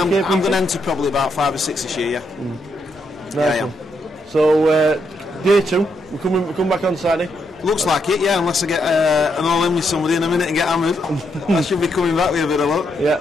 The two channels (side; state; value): both; normal; correlation 0.78